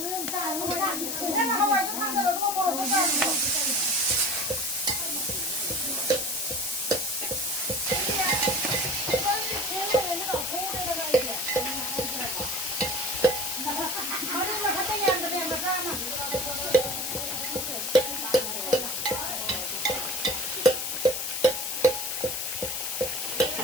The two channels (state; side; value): noise; left; hiss, 2 dB below the sound